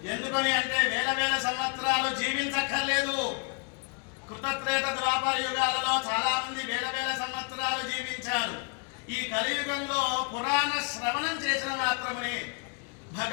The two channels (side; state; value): right; quieter; 31.8 dB